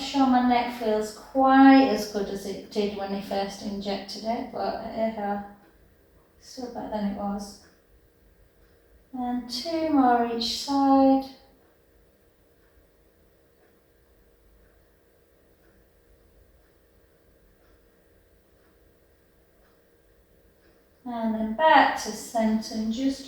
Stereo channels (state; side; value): identical; both; correlation 1.00